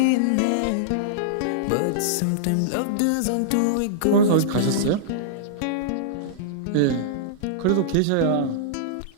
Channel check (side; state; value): both; different; correlation -0.02